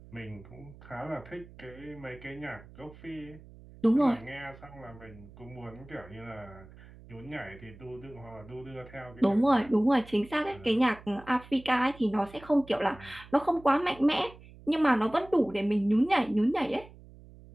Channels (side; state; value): right; noise; hum, 20 dB below the sound